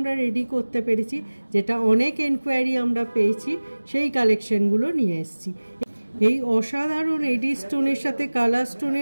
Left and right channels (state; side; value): inverted; both; correlation -1.00